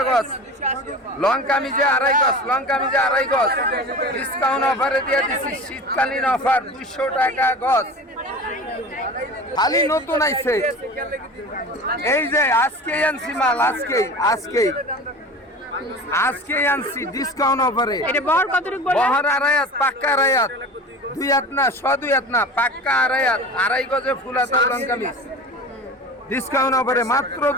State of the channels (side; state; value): both; normal; correlation 0.35